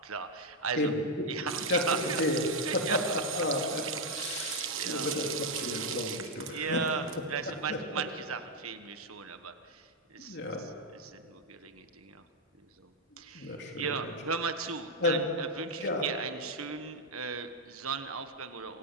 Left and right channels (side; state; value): both; normal; correlation 0.02